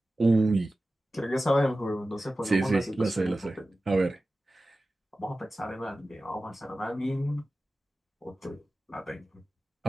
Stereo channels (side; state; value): both; normal; correlation 0.95